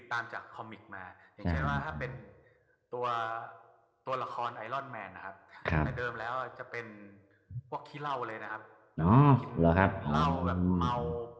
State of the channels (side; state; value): both; identical; correlation 1.00